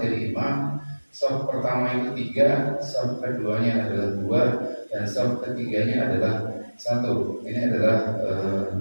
imam. Saf pertama itu 3, saf keduanya adalah 2, dan saf ketiganya adalah 1. Ini adalah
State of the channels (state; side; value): inverted; both; correlation -1.00